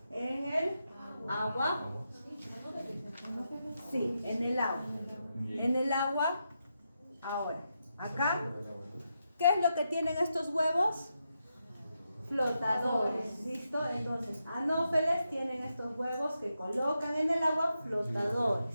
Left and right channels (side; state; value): both; inverted; correlation -0.85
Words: En el agua. Sí, en el agua. En el agua. Ahora, acá, ¿qué es lo que tienen estos huevos? Flotadores, ¿listo? Entonces, Anófeles tienen estos huevos que colocan en el agua